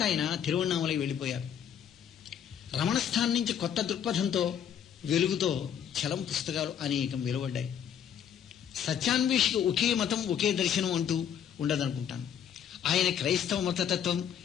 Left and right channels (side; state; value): right; quieter; 8.8 dB